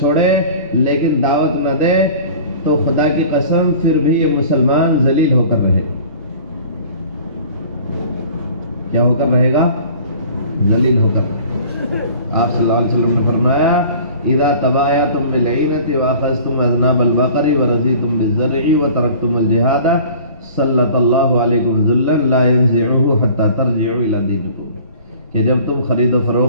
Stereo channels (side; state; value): both; inverted; correlation -0.46